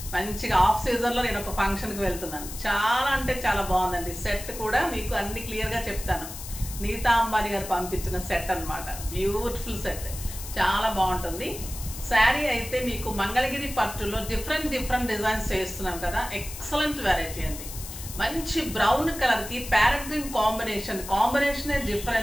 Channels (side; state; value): left; noise; hiss, 11 dB below the sound